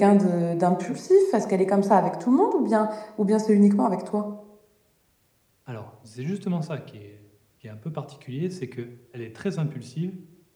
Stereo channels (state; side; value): identical; both; correlation 1.00